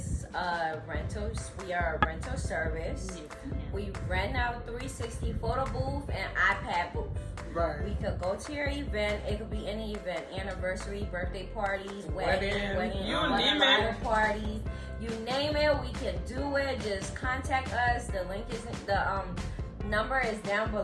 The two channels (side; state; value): both; identical; correlation 1.00